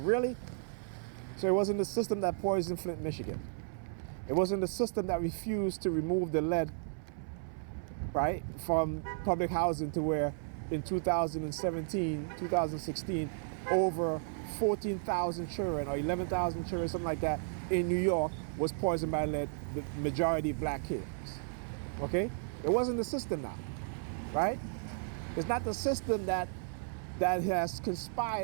So it wasn't the system that poisoned Flint, Michigan. It wasn't the system that refused to remove the lead, right, from public housing to where in 2017, 2016, over 14,000 children or 11,000 children, something like that, in New York was poisoned by lead, the majority black kids, okay? It wasn't the system now, right? It's not the system that has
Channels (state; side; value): silent; left; 55 dB below the other